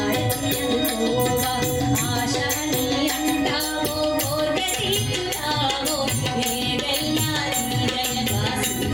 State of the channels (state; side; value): noise; right; hum, 15 dB below the sound